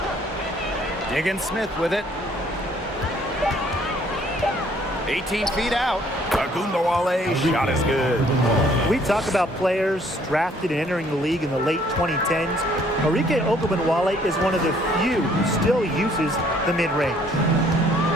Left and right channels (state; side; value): normal; both; correlation 0.62